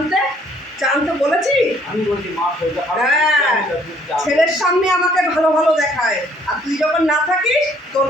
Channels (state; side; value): normal; both; correlation 0.62